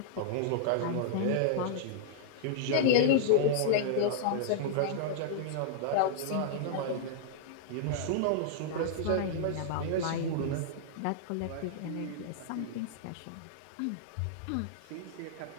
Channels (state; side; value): different; both; correlation -0.01